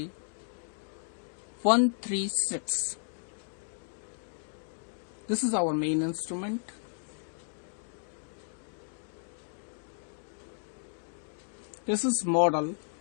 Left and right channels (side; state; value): right; silent; digital silence